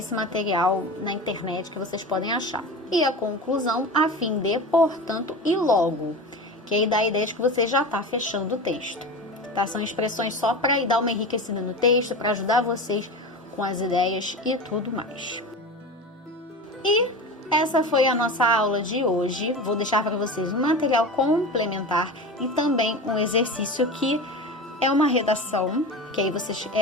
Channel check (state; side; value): normal; both; correlation 0.28